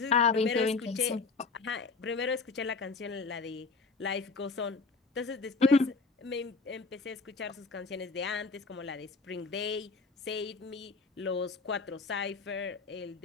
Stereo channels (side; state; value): right; quieter; 4.2 dB